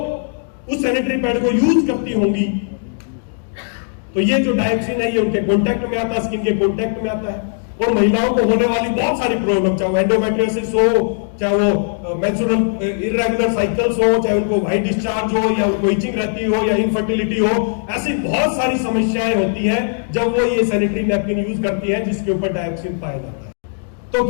उस सैनिटरी पैड को यूज करती होंगी तो ये जो डायोक्सिन है ये उनके कॉन्टैक्ट में आता है, स्किन के कॉन्टैक्ट में आता है, और महिलाओं को होने वाली बहुत सारी प्रॉब्लम, चाहे वो एंडोमेट्रियोसिस हो, चाहे वो मेंस्ट्रुअल इर्रेगुलर साइकिल्स हो, चाहे उनको व्हाइट डिस्चार्ज हो, या उनको इचिंग रहती हो, या इनफर्टिलिटी हो, ऐसी बहुत सारी समस्याएं होती हैं जब वो ये सैनिटरी नैपकिन यूज करती हैं जिसके ऊपर डायोक्सिन पाया जाता है। तो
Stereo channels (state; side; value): silent; right; digital silence